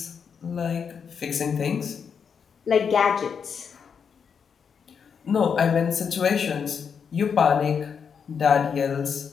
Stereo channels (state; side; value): quieter; right; 6.6 dB